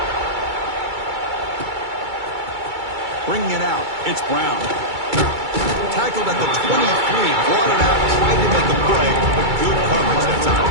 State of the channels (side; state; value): left; late; 2.3 ms